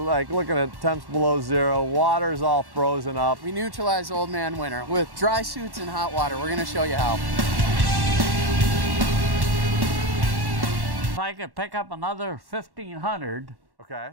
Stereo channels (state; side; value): late; left; 1.1 ms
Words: looking at temps below zero. Water's all frozen up. We neutralize old man winter with dry suits and hot water. We're gonna show you how. If I could pick up another 1,500, Okay.